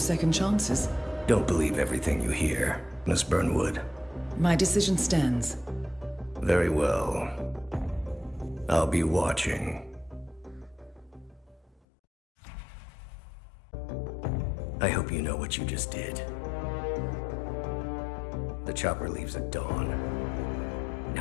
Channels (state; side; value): drops out; right; at 11.8 s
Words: chances. Don't believe everything you hear, Miss Burnwood. My decision stands. Very well. I'll be watching. I hope you know what you just did. The chopper leaves at dawn.